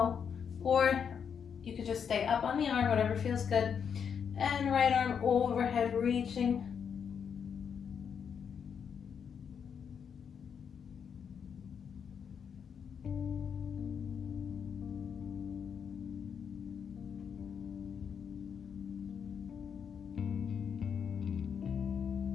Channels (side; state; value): right; quieter; 7.2 dB